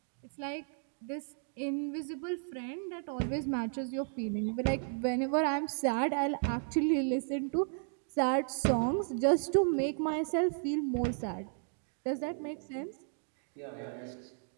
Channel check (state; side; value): silent; left; 55 dB below the other